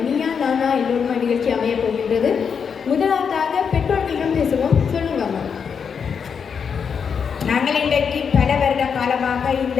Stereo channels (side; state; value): right; quieter; 6.6 dB